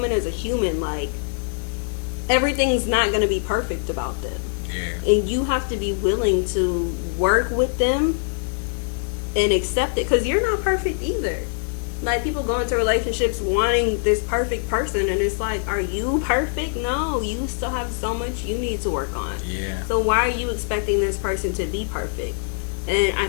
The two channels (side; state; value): right; silent; 60 dB below the other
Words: is a human. Like everything's not gonna be perfect about them, and you have to be willing to work with them and accept it, because you're not perfect either. Like people go into relationships wanting this perfect person, and it's like, are you perfect? No, you still have so much you need to work on. Yeah. So why are you expecting this person to be perfect? And I